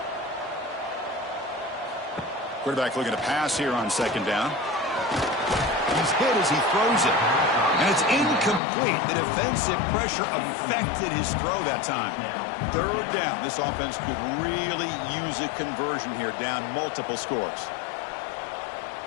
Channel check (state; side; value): drops out; right; at 8.6 s